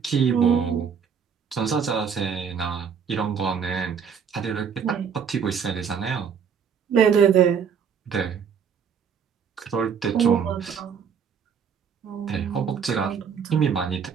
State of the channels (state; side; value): quieter; left; 7.0 dB